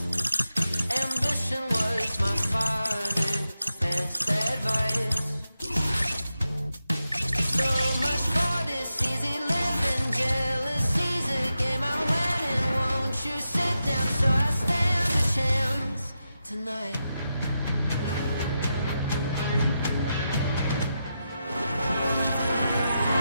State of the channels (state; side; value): inverted; both; correlation -0.88